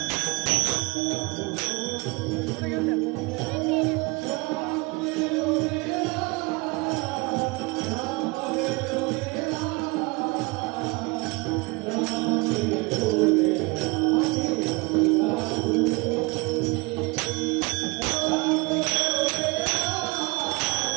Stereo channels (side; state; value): left; quieter; 26.3 dB